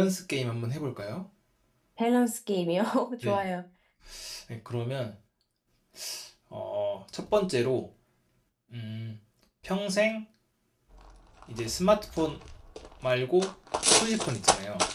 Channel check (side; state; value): both; identical; correlation 1.00